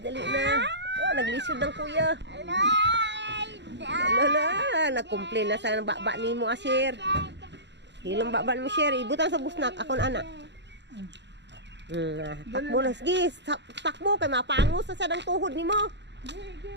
Dali na. Oh, naglisod ng kuya. Lola, nag-complain na sa baba ni mo, Asher. Hilong baba mo, Asher. Ibutan sa busnak. Ako na anak. Takbo na. Sige, takbo. Kay mapangos sa sadang tuhod ni mo.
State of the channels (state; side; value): late; left; 0.51 ms